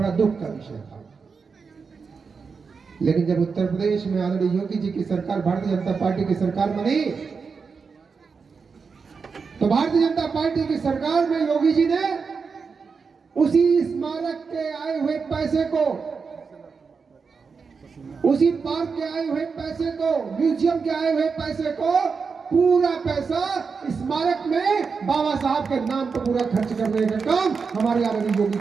दुख का विषय था। लेकिन जब उत्तर प्रदेश में आदरणीय योगी जी की सरकार, भारतीय जनता पार्टी की सरकार बनी, तो भारतीय जनता पार्टी की सरकार में योगी जी ने उसी स्मारक के आए हुए पैसे को, उसी पार्क के आए हुए पैसे को, म्यूजियम के आए हुए पैसे को, पूरा पैसा स्मारक में बाबा साहब के नाम पर पूरा खर्च करने का काम हमारे आदरणीय योगी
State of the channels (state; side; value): quieter; left; 5.2 dB